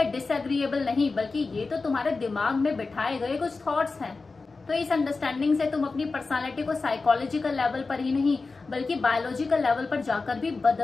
डिसएग्रीएबल नहीं, बल्कि ये तो तुम्हारे दिमाग में बिठाए गए कुछ थॉट्स हैं, तो इस अंडरस्टैंडिंग से तुम अपनी पर्सनालिटी को साइकोलॉजिकल लेवल पर ही नहीं बल्कि बायोलॉजिकल लेवल पर जाकर भी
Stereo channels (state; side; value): quieter; right; 4.0 dB